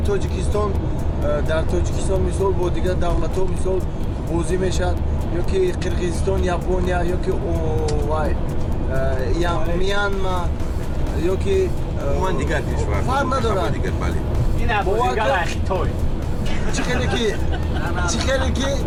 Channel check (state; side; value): identical; both; correlation 1.00